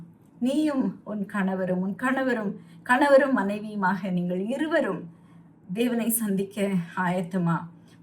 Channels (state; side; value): identical; both; correlation 1.00